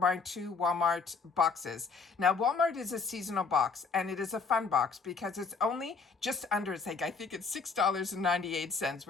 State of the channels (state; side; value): quieter; right; 4.7 dB